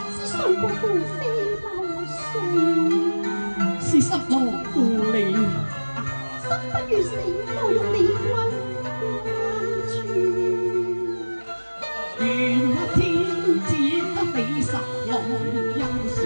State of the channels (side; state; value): both; inverted; correlation -1.00